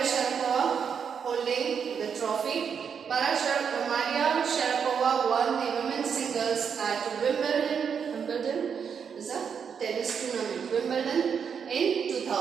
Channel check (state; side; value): quieter; left; 6.9 dB